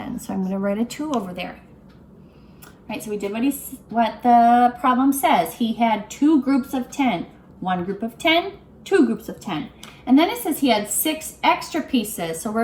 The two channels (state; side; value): identical; both; correlation 1.00